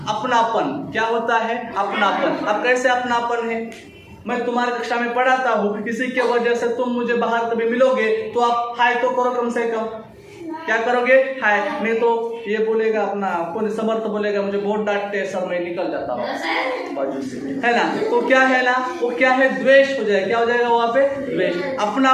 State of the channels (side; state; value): both; identical; correlation 1.00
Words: अपनापन, क्या होता है, अपनापन। अब कैसे अपनापन है, मैं तुम्हारी कक्षा में पढ़ाता हूँ, किसी के वजह से तुम मुझे बाहर कभी मिलोगे तो आप हाय तो करो कम से कम। क्या करोगे, हाय। नहीं तो ये बोलेगा अपना कौन, समर्थ बोलेगा मुझे बहुत डांटते सर, मैं निकल जाता हूँ बाजू से, है ना। तो क्या है ना, वो क्या है, द्वेष हो जाएगा। क्या हो जाएगा वहाँ पे, द्वेष।